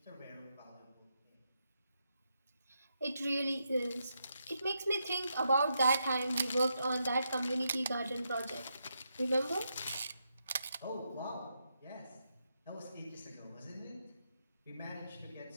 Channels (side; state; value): both; inverted; correlation -0.82